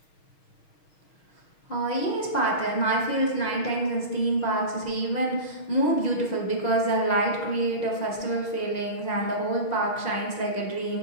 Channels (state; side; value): late; right; 6.3 ms